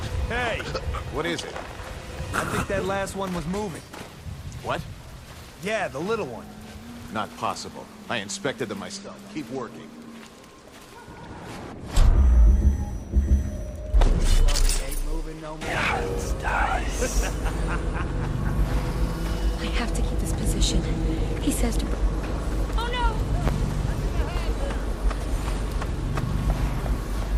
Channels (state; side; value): identical; both; correlation 1.00